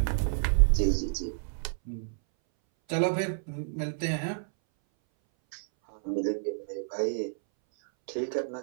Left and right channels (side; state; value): left; silent; 58 dB below the other